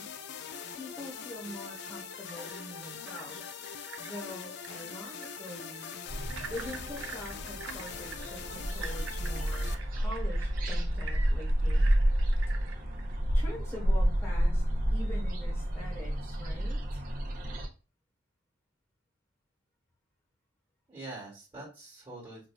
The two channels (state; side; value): normal; both; correlation 0.92